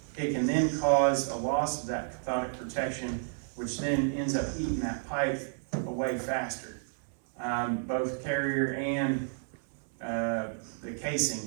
it can then cause a loss of that cathodic protection, which then ends up eating that pipe away faster. Both carrier and the casing.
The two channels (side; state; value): left; silent; digital silence